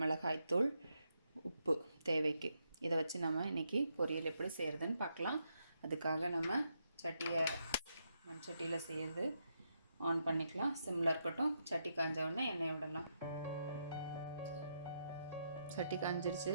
மிளகாய்த்தூள், உப்பு தேவைக்கு. இதை வச்சு நம்ம இன்றைக்கி பொரியல் எப்படி செய்கிறதுன்னு பார்க்கலாம். அதுக்காக நம்ம மண் சட்டியில் செய்கிறது ஆன் பண்ணிக்கலாம். சிம்மில் இருக்கட்டும். சட்டி காஞ்ச உடனே எண்ணெய் விடலாம். சட்டி காஞ்சிருச்சு.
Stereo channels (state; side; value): inverted; both; correlation -0.81